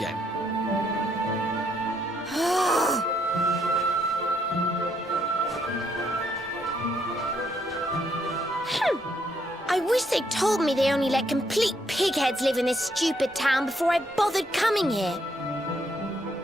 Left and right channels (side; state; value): both; normal; correlation 0.73